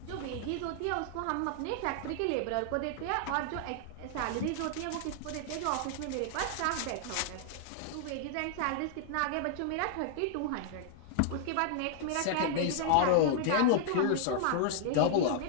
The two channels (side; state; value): both; different; correlation -0.01